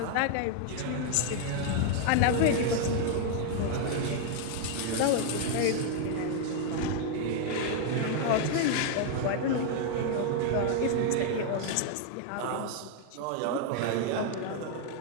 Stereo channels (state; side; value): different; both; correlation 0.00